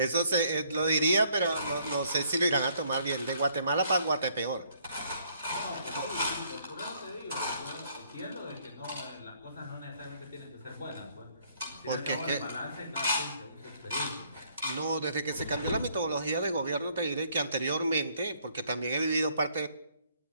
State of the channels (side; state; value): both; inverted; correlation -0.66